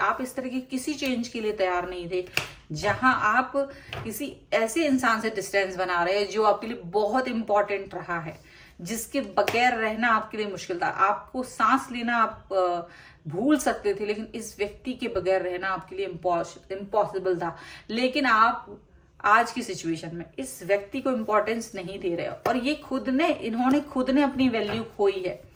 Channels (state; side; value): identical; both; correlation 1.00